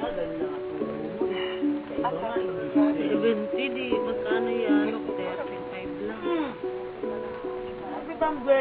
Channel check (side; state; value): both; identical; correlation 1.00